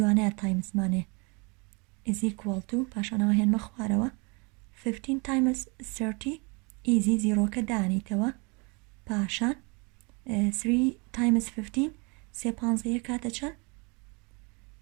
تایمزمانێ is equal to پاشانەوە هێنمە خوارەوە 15 times 30 easy زیرۆکە دانیتەوە پاشان 3 times 15 سێ پانزەیە کاتە چەند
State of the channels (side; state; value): left; quieter; 30.6 dB